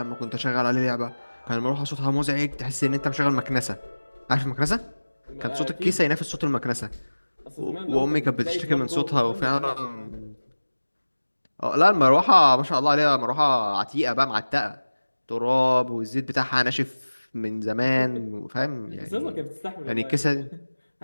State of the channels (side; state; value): both; inverted; correlation -1.00